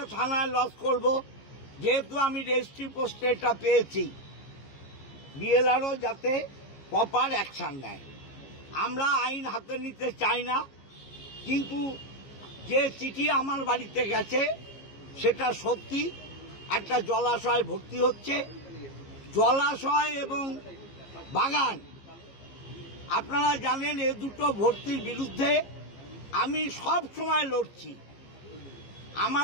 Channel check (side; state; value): right; late; 15 ms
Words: থানায় লজ করব, যেহেতু আমি রেজিস্ট্রি পোস্টে এটা পেয়েছি। বিএলআরও যাতে প্রপার অ্যাকশন নেয়। আমরা আইন হাতে নিতে চাই না, কিন্তু যে চিঠি আমার বাড়িতে গেছে সেটা সত্যি। একটা জলাশয় ভর্তি হচ্ছে, জলাশয় এবং বাগান। আপনারা জানেন এই দুটো ভর্তির বিরুদ্ধে আমি সব সময় লড়ছি।